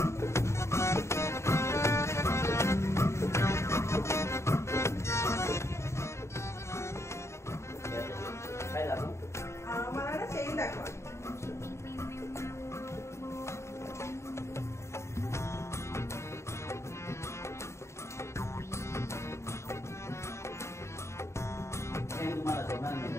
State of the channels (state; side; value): late; right; 0.13 ms